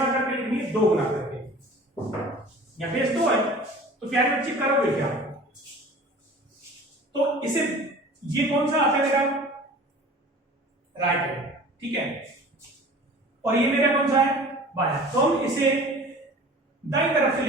करके लिखनी है 2 गुना करके। यहाँ बेस 2 है, तो प्यारे बच्चे करोगे क्या, तो इसे ये कौन सा आता है मेरा राइट है, ठीक है, और ये मेरा कौन सा है बाया। तो हम इसे दाईं तरफ से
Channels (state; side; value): normal; both; correlation 0.43